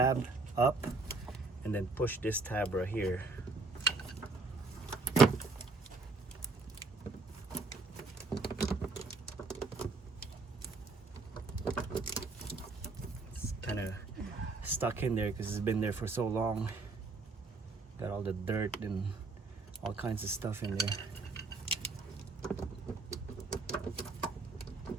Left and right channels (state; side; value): quieter; left; 3.7 dB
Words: up and then push this tab right here. It's kind of stuck in there because it's been there for so long. Got all the dirt and all kinds of stuff in there.